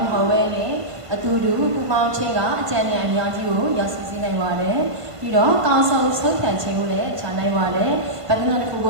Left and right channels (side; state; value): left; late; 1.5 ms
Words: းမဟုတ်ပဲနဲ့အတူတူပူပေါင်းခြင်းကအကြံဉာဏ်အများကြီးကိုရောက်စီနိုင်ပါတယ်ပြီးတော့ကောင်းဆုံးဆုံးဖြတ်ခြင်းကိုလည်းချနိုင်ပါတယ်ဗဒနာတစ်ခုကိ